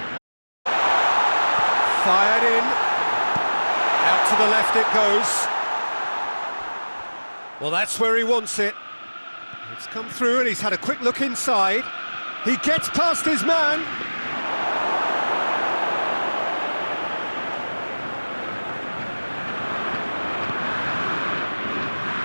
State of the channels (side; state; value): both; inverted; correlation -1.00